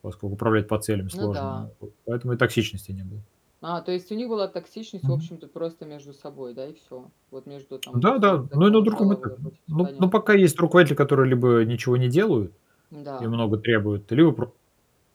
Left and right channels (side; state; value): both; identical; correlation 1.00